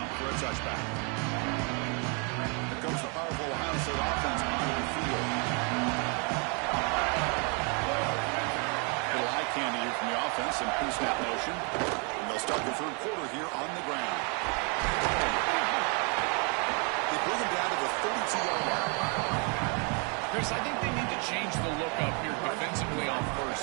for a touchback. Here comes the powerful Ohio State offense onto the field. A little eye candy here from the offense and pre-snap motion. And they'll start the 3rd quarter here on the ground. bring him down to the 32-yard line. Chris, I think they need to change the look up here defensively on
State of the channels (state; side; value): quieter; left; 35.4 dB